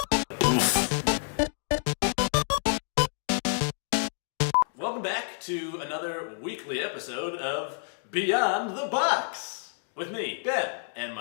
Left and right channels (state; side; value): silent; right; 59 dB below the other